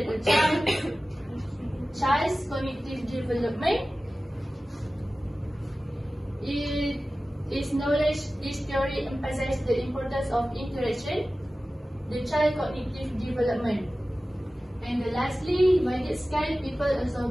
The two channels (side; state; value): both; normal; correlation 0.96